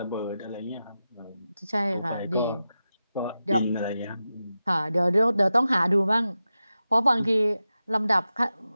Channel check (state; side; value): inverted; both; correlation -0.92